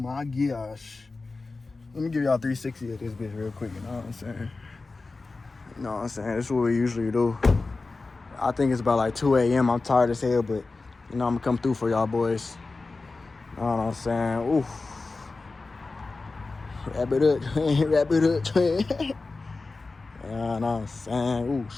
gosh. Let me give y'all 360 of this bitch real quick, you know what I'm saying? You know what I'm saying? This is what we usually do. I think it's about like 2 a.m. I'm tired as hell, but, you know, I'm gonna come through for y'all boys. You know what I'm saying? Ooh. Wrap it up, twin. Wrap it up, twin. You know what I'm saying? Ooh,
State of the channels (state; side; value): quieter; right; 3.7 dB